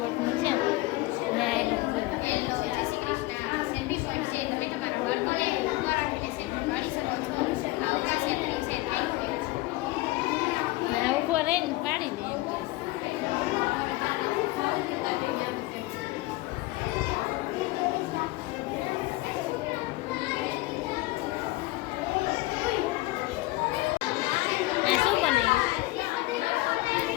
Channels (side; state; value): right; quieter; 19.8 dB